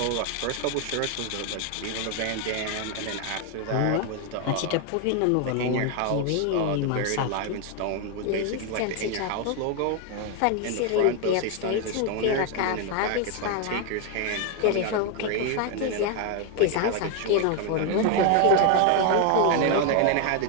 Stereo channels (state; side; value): different; both; correlation 0.01